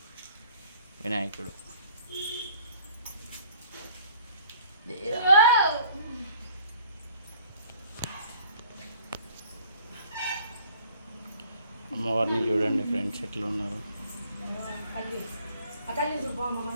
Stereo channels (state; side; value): inverted; both; correlation -0.55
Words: వినాయకుడు అమ్మవారిని చూడండి ఫ్రెండ్స్, ఎట్లా ఉన్నారు.